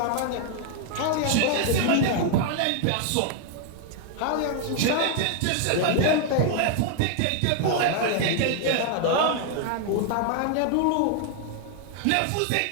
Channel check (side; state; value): both; different; correlation 0.00